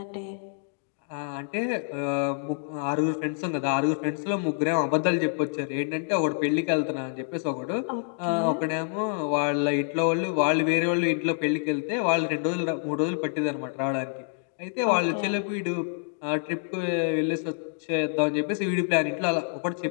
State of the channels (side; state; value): right; silent; digital silence